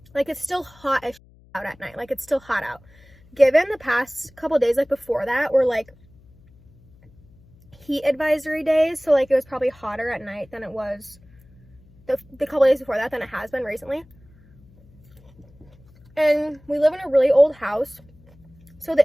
Like, it's still hot as out at night. Like, it's still hot out. Given the past couple days, like before that, were like heat advisory days, so like it was probably hotter at night than it was the couple days before that than it has been recently. And we live in a really old house, so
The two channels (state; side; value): noise; left; hum, 27 dB below the sound